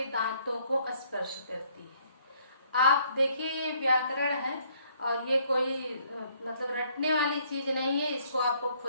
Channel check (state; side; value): inverted; both; correlation -0.65